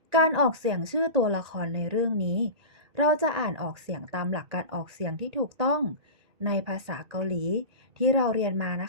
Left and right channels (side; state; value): left; late; 1.8 ms